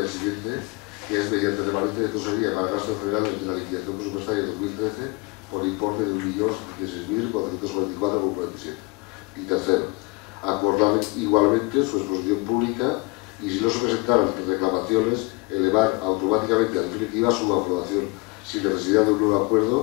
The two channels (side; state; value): right; quieter; 26.5 dB